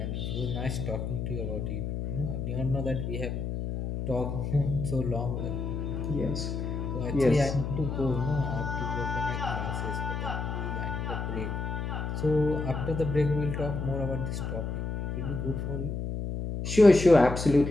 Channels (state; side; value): noise; left; hum, 3 dB below the sound